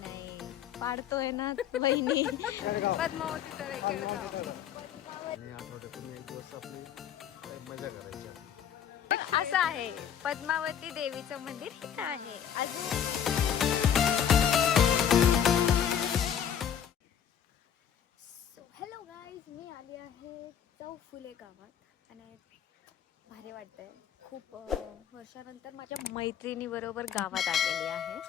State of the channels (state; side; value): quieter; right; 9.0 dB